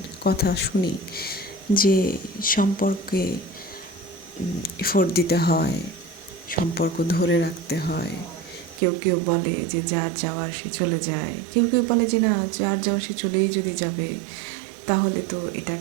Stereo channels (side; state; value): left; drops out; at 8.8 s